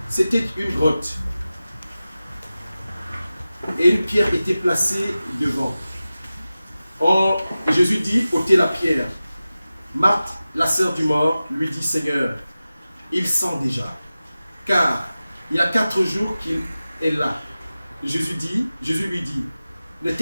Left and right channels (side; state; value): both; inverted; correlation -0.95